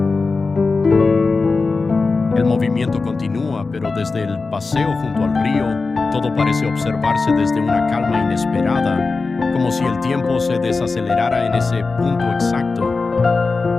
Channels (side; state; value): right; quieter; 4.0 dB